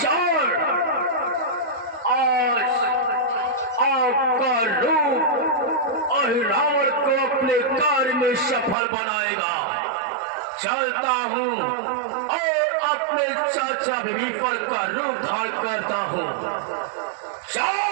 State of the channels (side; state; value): left; drops out; at 8.8 s